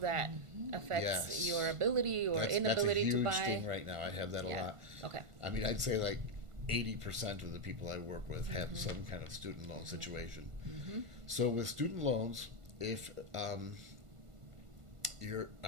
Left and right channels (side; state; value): left; late; 1.5 ms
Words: affects Yes. your ability or That's a inability huge to buy? thing right now. I have that a Yeah. lot. Okay. I mean, I'd say like 80% of the people I work with have some kind of student loan situation. So with student loans, if you're